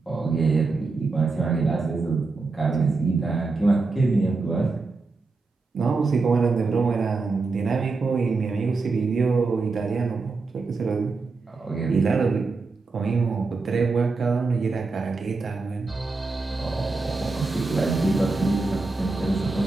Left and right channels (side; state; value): left; quieter; 3.9 dB